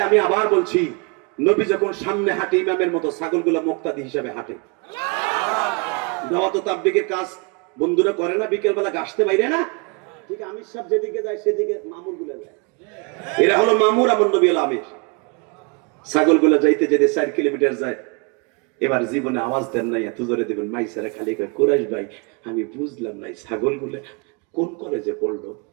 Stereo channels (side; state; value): left; quieter; 31.3 dB